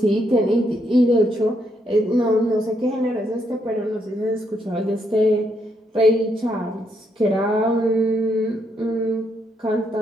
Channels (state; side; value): normal; both; correlation 0.76